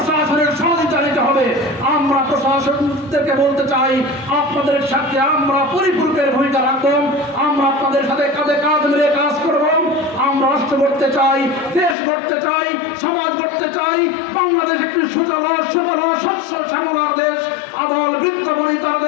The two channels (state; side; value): drops out; right; at 12.0 s